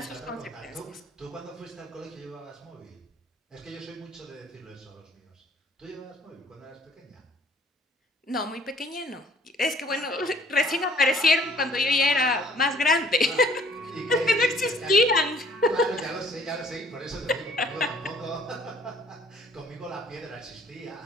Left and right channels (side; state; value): both; normal; correlation 0.58